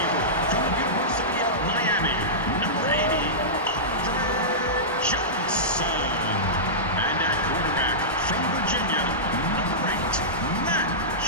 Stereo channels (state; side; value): normal; both; correlation -0.16